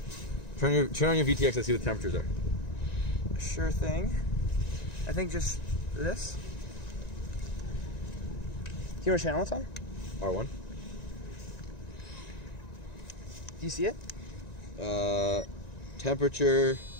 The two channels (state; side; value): late; right; 1.9 ms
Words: Turn on your VTX and see what the temperatures are. Sure thing. I think just this. Do you know what channel it's on? R1. Do you see it? Temperature.